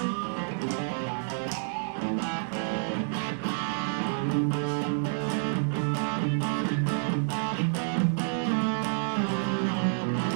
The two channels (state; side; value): silent; left; digital silence